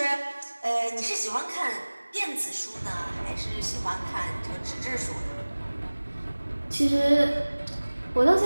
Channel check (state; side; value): inverted; both; correlation -1.00